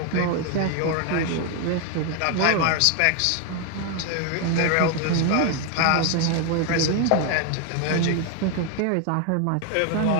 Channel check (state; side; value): different; both; correlation 0.01